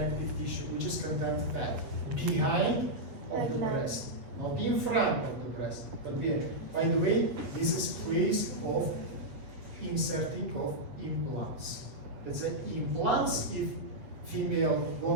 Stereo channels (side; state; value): left; late; 7.5 ms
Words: tissue, which is content fat behind of the breast, not in front of the breast, but behind. By the way, this is place of inserting of implants. Let's say implants if female